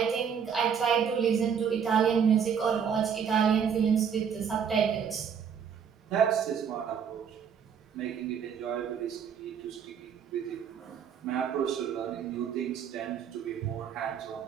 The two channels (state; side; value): quieter; left; 7.4 dB